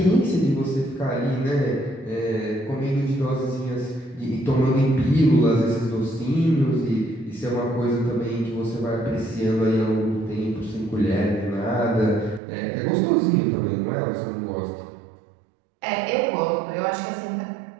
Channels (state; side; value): drops out; left; at 12.4 s